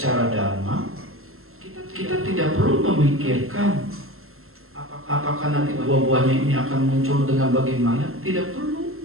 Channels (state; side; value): late; left; 0.62 ms